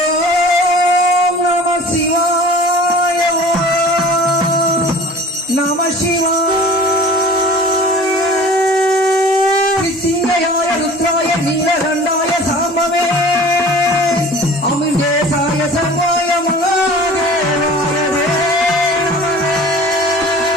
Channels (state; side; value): normal; both; correlation 0.44